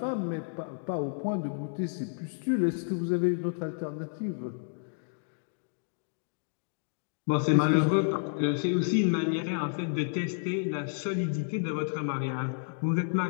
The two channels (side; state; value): right; silent; digital silence